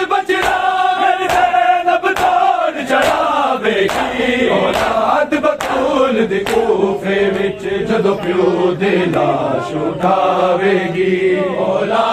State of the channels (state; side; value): identical; both; correlation 1.00